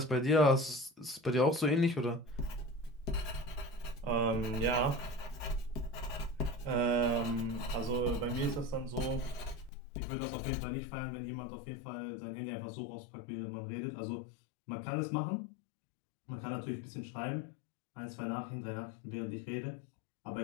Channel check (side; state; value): right; drops out; at 9.7 s